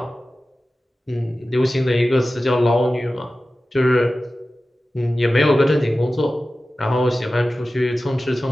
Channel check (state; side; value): normal; both; correlation 0.95